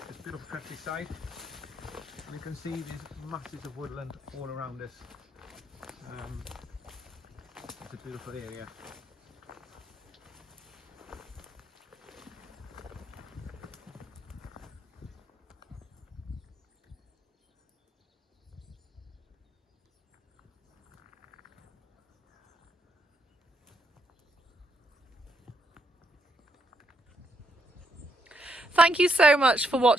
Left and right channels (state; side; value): normal; both; correlation 0.77